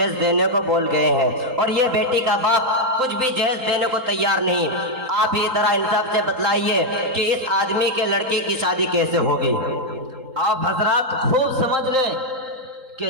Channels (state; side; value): late; left; 3.8 ms